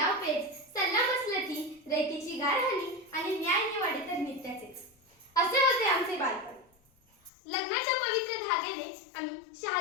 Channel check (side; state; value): right; drops out; at 7.3 s